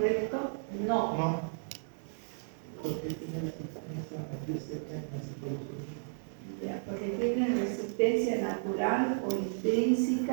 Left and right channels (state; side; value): silent; left; digital silence